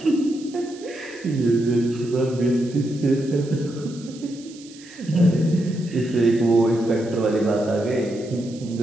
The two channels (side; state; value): right; noise; hiss, 21 dB below the sound